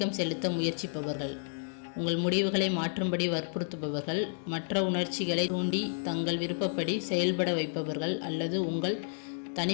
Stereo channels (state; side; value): silent; right; digital silence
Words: செலுத்த முயற்சிப்பவர்கள். உங்கள் முடிவுகளை மாற்றும்படி வற்புறுத்துபவர்கள், மற்ற உணர்ச்சிகளை தூண்டி தங்கள் விருப்பப்படி செயல்பட வைப்பவர்கள் அல்லது உங்கள்